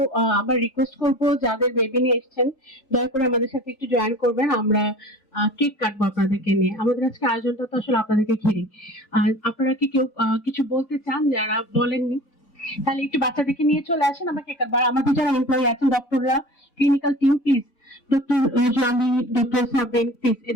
আবার রিকোয়েস্ট করবো যাদের বেবি নিয়ে এসেছেন দয়া করে আমাদের সাথে একটু জয়েন করবেন। আমরা কেক কাটবো আপনাদেরকে নিয়ে। আমাদের আজকে আয়োজনটা তো আসলে আপনাদেরকে ঘিরে। আর আপনারা কি কেউ কিছু বলতে চান যারা বলেননি? তাহলে একটু বাচ্চাদেরকে নিয়ে চলে আসেন, আমরা কেক কাটবো। আর আমাদের যারা এমপ্লয়ি আছেন, ডক্টররা, clinical team, please doctor Johnny, doctor সাবেন, প্লিজ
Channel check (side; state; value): right; late; 3.3 ms